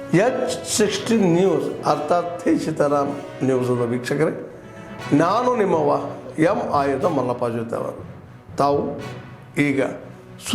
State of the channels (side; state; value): both; identical; correlation 1.00